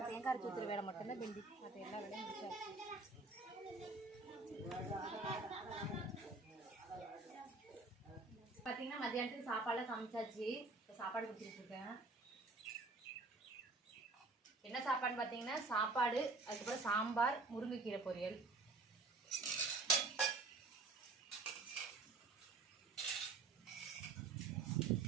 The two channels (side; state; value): left; quieter; 3.6 dB